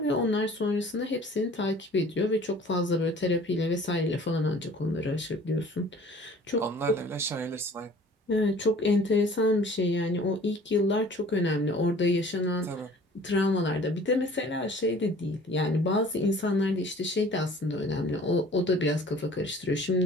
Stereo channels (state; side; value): normal; both; correlation 0.50